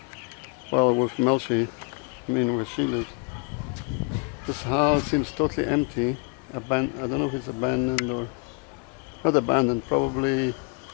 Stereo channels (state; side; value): quieter; right; 33.7 dB